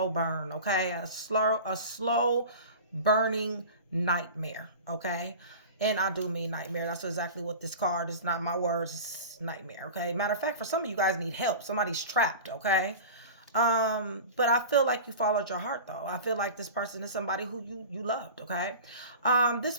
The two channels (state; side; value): inverted; both; correlation -0.35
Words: burn, okay? A slow burning nightmare, okay? And I do mean nightmare. That's exactly what this card is. Not my words. It's nightmare, okay? Matter of fact, for some of you guys need help. Somebody's trapped, okay? But I feel like you followed your heart though. I feel like this person is somebody who you loved, okay? This